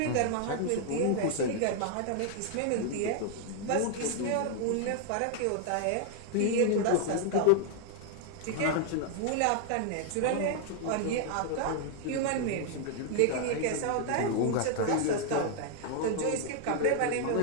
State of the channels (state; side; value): different; both; correlation 0.00